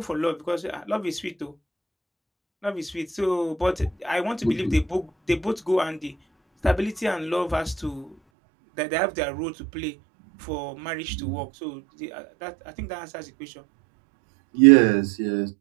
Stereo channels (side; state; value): left; drops out; at 8.2 s